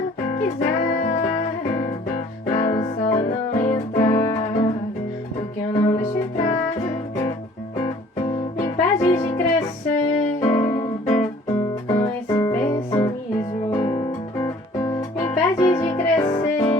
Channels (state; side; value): normal; both; correlation 0.53